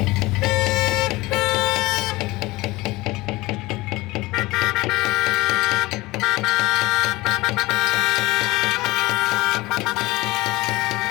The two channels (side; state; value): right; quieter; 20.7 dB